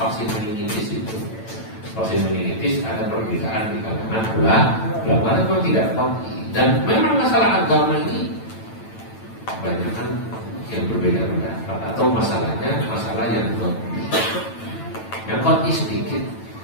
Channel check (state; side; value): late; right; 9.0 ms